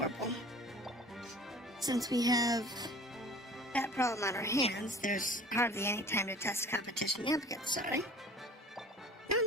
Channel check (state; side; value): normal; both; correlation 0.43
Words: Since we have that problem on our hands, there's hardly any time to test competition applicants, sorry.